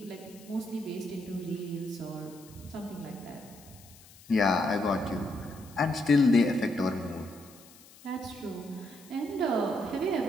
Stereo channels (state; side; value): noise; left; hiss, 22 dB below the sound